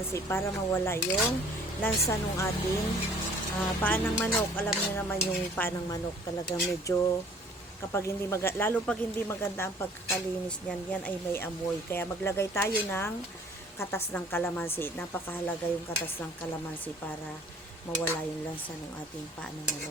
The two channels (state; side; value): normal; both; correlation 0.53